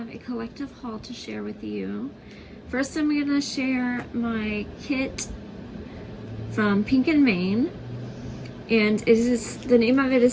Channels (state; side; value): identical; both; correlation 1.00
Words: a collective haul to share with you. First, I'm going to share my kit from Pink and Main, and the name of it